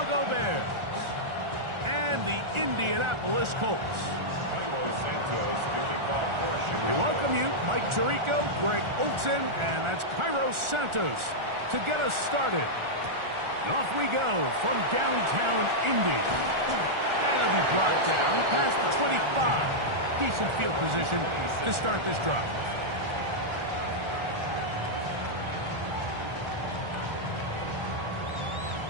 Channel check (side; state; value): left; late; 1.4 ms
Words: Bears and the Indianapolis Colts. We welcome you, Mike Tirico, Greg Olson, and that's Cairo Santos to get us started. And off we go from downtown Indy. And it'll be brought down past the 25. Decent field position to start this drive.